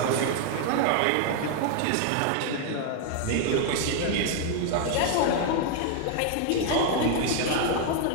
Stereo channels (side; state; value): both; different; correlation 0.00